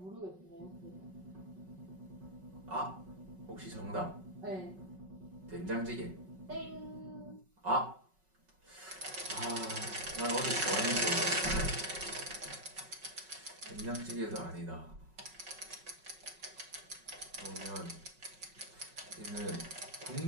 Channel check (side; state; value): left; late; 5.4 ms